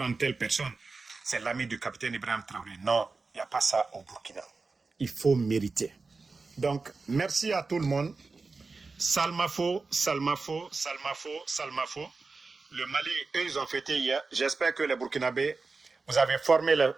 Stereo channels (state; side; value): quieter; left; 4.1 dB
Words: telle personne, c'est l'ami du capitaine Ibrahim Traoré. Non, il n'y a pas ça au Burkina. Il faut mériter. Donc, merci à tout le monde. Salmafo, Salmafo, Salmafo, Salmafo. Le Mali, eux, ils ont fêté hier. J'espère que les Burkinabés,